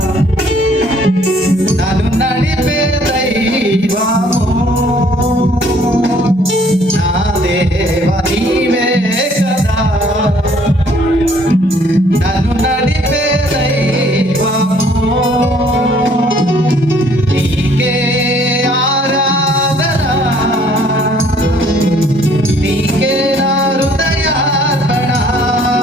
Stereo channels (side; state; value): both; normal; correlation 0.61